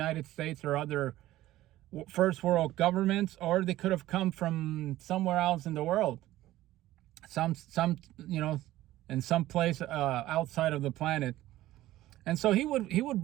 States or other first world governments, or they could have come from somewhere else in the world. Some in some place outside of the planet. And so he would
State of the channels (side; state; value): left; quieter; 15.4 dB